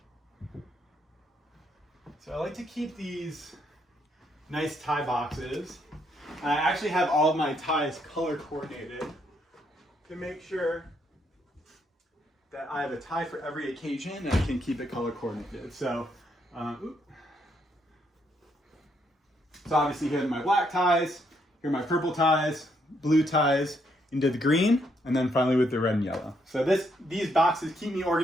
So I like to keep these nice tie boxes. And I actually have all of my ties color coordinated to make sure that I have a tie for every occasion and I can keep it color coordinated. So obviously here are my black ties, here are my purple ties, blue ties, into the green, and then finally with the red and yellow. So these boxes keep me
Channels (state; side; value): normal; both; correlation 0.74